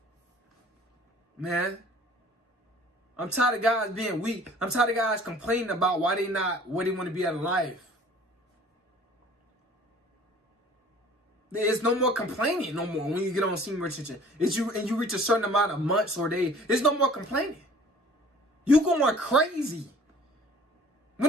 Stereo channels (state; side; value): normal; both; correlation 0.51